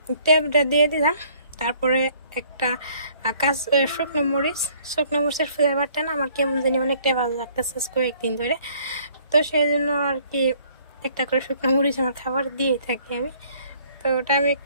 ট্যাবটা দিয়ে দিলাম। তারপরে একটা শুকনো মরিচের ফ্লেভারটা না আমার কেমন জানি অনেকটাই ভালো লাগতেছে কয়েকদিন ধরে। তো সেই জন্য আর কি একটা করে শুকনো মরিচ আমার খাবার দিয়ে থাকি আমি। তো ওটা আমি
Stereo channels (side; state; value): both; inverted; correlation -0.59